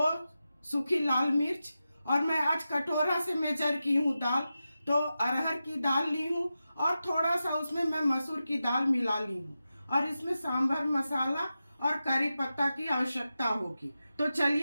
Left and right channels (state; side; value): inverted; both; correlation -0.92